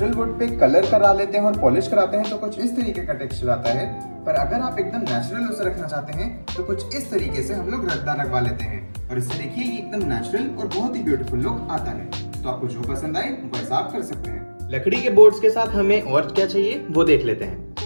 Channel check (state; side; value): inverted; both; correlation -1.00